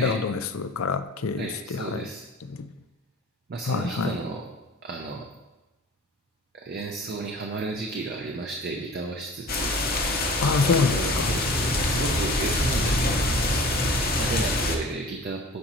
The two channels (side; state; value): both; normal; correlation 0.42